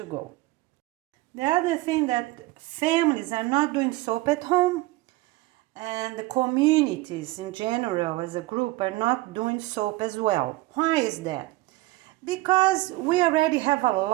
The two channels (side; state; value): left; quieter; 19.2 dB